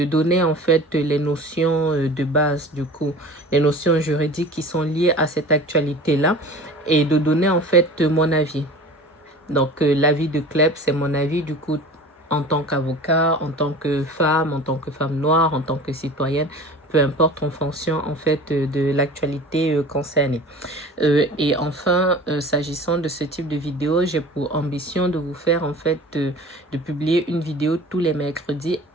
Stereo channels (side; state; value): both; normal; correlation 0.40